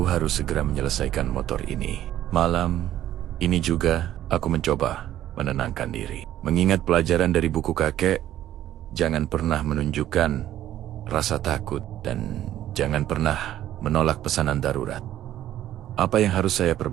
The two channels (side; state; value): left; quieter; 12.5 dB